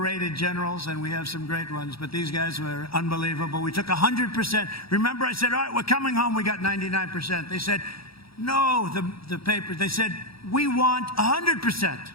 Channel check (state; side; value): late; right; 0.76 ms